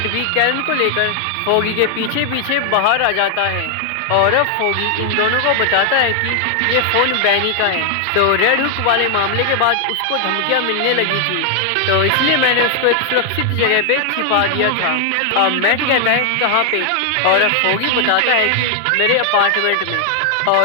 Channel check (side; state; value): both; different; correlation 0.00